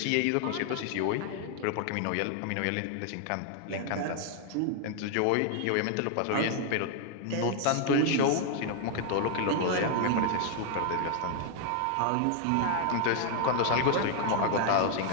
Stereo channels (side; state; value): both; different; correlation 0.00